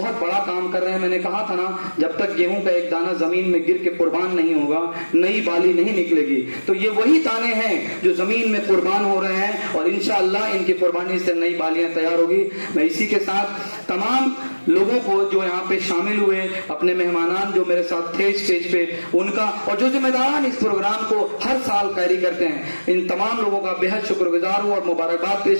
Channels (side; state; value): both; inverted; correlation -1.00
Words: बड़ा काम कर रहे हैं। मैंने कहा था ना, जब तक गेहूं का एक दाना जमीन में गिर के कुर्बान नहीं होगा, नई बाली नहीं निकलेगी। तो ये वही दाने हैं जो जमीन में कुर्बान हो रहे हैं और इंशाअल्लाह इनकी कुर्बानी से नई बालियां तैयार होगी। मैं इसी के साथ तमाम लोगों को जो यहाँ पे शामिल हुए, अपने मेहमानान जो मेरे साथ थे स्टेज पे, उनका और जो जिम्मेदारान इस प्रोग्राम को हर साल कैरी करते हैं, इन तमाम लोगों का बेहद शुक्रगुजार हूँ और मुबारकबाद